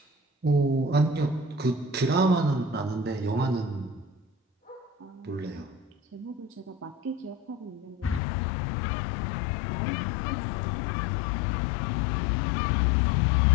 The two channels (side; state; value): right; drops out; at 8.2 s